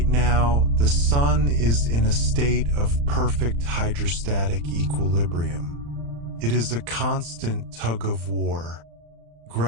now, the Sun is in a state of perfect hydrostatic equilibrium. It is a constant tug of war.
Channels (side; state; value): left; late; 35 ms